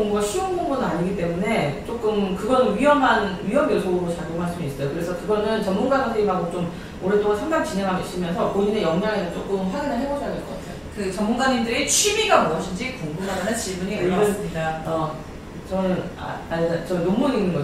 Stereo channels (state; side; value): identical; both; correlation 1.00